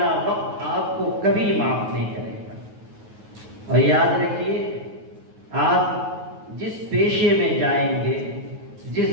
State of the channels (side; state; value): left; late; 9.4 ms